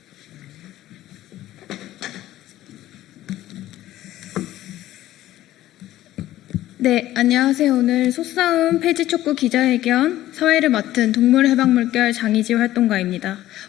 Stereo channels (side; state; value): right; quieter; 14.4 dB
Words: 네, 안녕하세요. 오늘 소싸움 폐지촉구 기자회견 사회를 맡은 동물해방물결 장의지 활동가입니다.